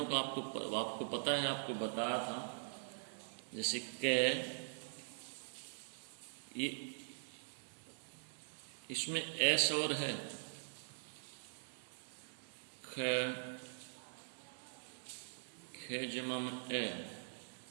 का आपको पता है, आपको बताया था, जैसे क, ये इसमें ए स्वर है, ख जमा में ए,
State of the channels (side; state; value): left; silent; digital silence